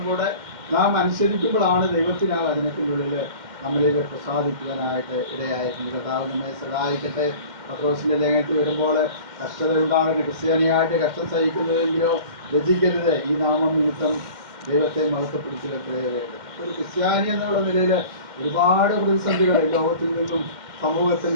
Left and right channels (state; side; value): late; left; 2.1 ms